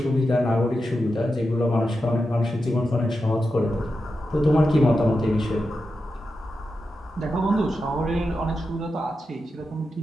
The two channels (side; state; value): both; normal; correlation 0.89